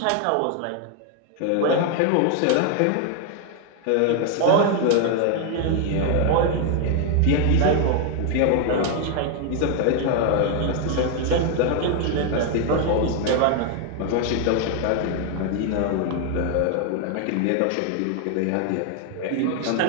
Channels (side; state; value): both; different; correlation 0.00